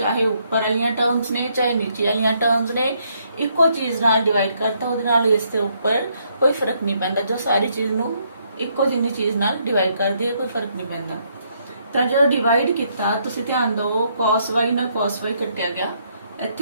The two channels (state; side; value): inverted; both; correlation -0.72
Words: ऊपर वाली टर्म्स ने चाहे नीचे वाली टर्म्स ने इको चीज नाल डिवाइड करता, उहदे नाल इस दे ऊपर कोई फर्क नहीं पैंदा। जो सारी चीज नू इको जिन्नी चीज नाल डिवाइड कर दी कोई फर्क नहीं पैंदा। तो जो डिवाइड किया तुसी ध्यान दो, cos y नाल cos y कटिया गया,